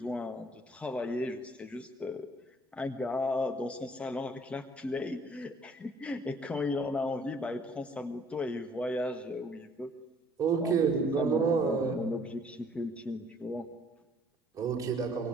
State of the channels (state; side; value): normal; both; correlation 0.59